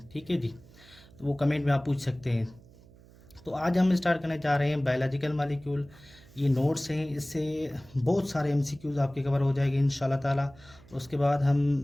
ठीक है जी। तो वो कमेंट में आप पूछ सकते हैं। तो आज हम स्टार्ट करने जा रहे हैं बायोलॉजिकल मॉलिक्यूल। ये नोट्स हैं, इससे बहुत सारे एमसीक्यूज़ आपके कवर हो जाएंगे इंशाल्लाह ताला। उसके बाद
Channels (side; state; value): right; noise; hum, 24 dB below the sound